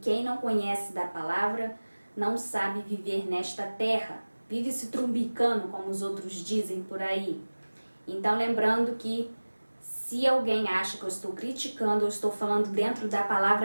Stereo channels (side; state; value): both; inverted; correlation -1.00